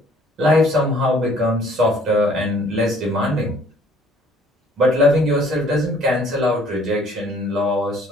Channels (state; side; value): normal; both; correlation 0.58